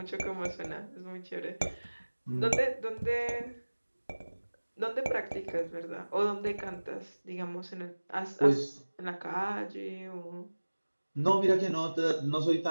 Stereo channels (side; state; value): both; inverted; correlation -1.00